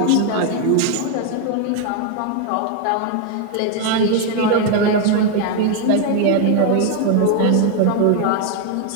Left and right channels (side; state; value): both; different; correlation 0.01